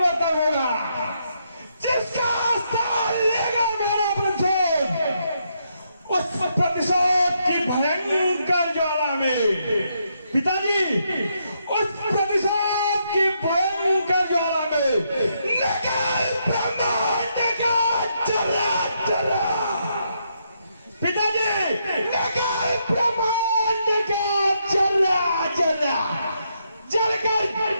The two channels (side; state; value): both; inverted; correlation -0.78